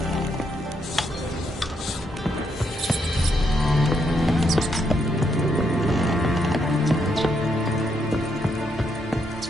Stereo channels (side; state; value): both; normal; correlation 0.77